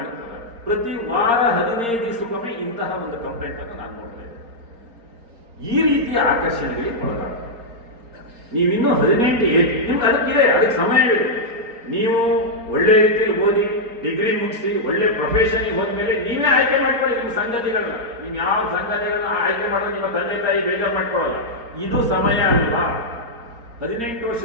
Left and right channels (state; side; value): late; left; 4.3 ms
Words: ಪ್ರತಿ ವಾರ 15 ದಿವಸಕ್ಕೊಮ್ಮೆ ಇಂತಹ ಒಂದು ಕಂಪ್ಲೇಂಟ್ ಅನ್ನು ನಾನು ನೋಡ್ತಾ ಇದ್ದೇನೆ. ಈ ರೀತಿಯ ಆಕರ್ಷಣೆಗಳಿಗೆ ಒಳಗಾಗ್ತದೆ. ನೀವಿನ್ನೂ 18 ಏಜ್ ನಿಮ್ಗೆ ಅದಕ್ಕೆ ಸಮಯವಿದೆ. ನೀವು ಒಳ್ಳೆ ರೀತಿಯಲ್ಲಿ ಓದಿ ಡಿಗ್ರಿ ಮುಗಿಸಿ ಒಳ್ಳೆ ಪ್ರೊಫೆಷನ್ಗೆ ಹೋದ್ಮೇಲೆ ನೀವೇ ಆಯ್ಕೆ ಮಾಡ್ಕೊಳ್ಳಿ ನಿಮ್ಮ ಸಂಗತಿಗಳನ್ನ. ನೀವು ಯಾವ ಸಂಗತಿಗಳನ್ನ ಆಯ್ಕೆ ಮಾಡೋದು ನಿಮ್ಮ ತಂದೆ ತಾಯಿ ಬೇಜಾರು ಮಾಡ್ಕೊಳ್ಳಲ್ಲ. ಇದು ಸಮಯ ಅಲ್ವಾ? 18